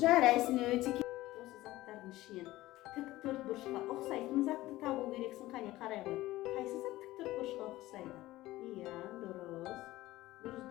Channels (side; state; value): right; quieter; 17.0 dB